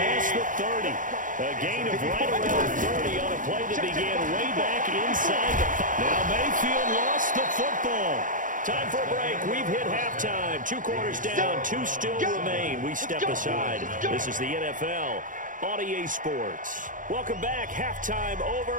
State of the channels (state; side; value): late; left; 0.38 ms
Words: the 30. A gain of right around 30 on a play that began way back inside the 5. Now Mayfield lost the football. Time for a break. We've hit halftime. 2 quarters down, 2 still remain. We step aside. This is the NFL on EA Sports. Welcome back. Halftime